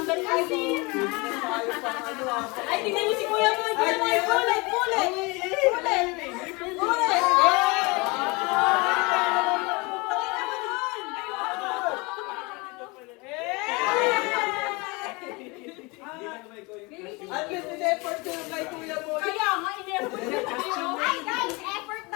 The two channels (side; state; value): right; quieter; 26.6 dB